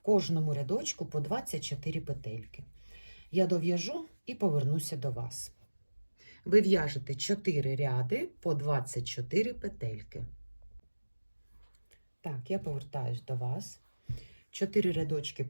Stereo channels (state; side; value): inverted; both; correlation -1.00